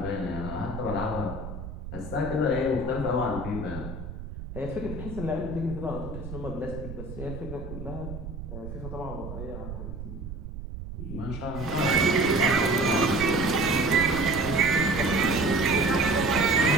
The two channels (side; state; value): right; noise; rumble, 9 dB below the sound